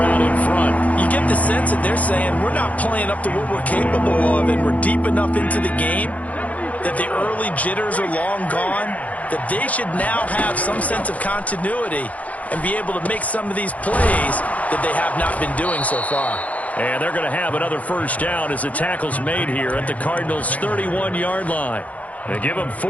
out in front. You get the sense that they're saying we're not playing up to what we're capable of, and we're deep enough into the game that the early jitters are long gone. that they should now have some sense of continuity and be able to make some of these plays that they have not been doing so far. And they're going to have another first down as the tackle's made here at the Cardinals' 31-yard line. They give them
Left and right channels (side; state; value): right; late; 0.070 ms